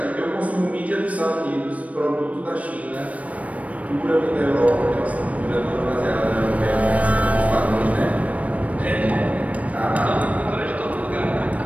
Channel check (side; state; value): left; late; 0.067 ms